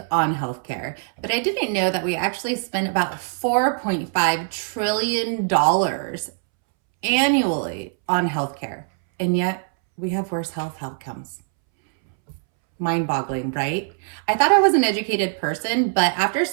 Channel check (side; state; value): left; silent; 64 dB below the other